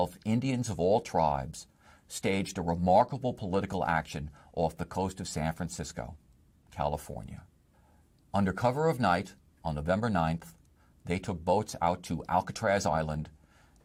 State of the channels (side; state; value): both; identical; correlation 1.00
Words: Indians of All Tribes staged a remarkable political action off the coast of San Francisco, California. Under cover of night, on November 9th, they took boats out to Alcatraz Island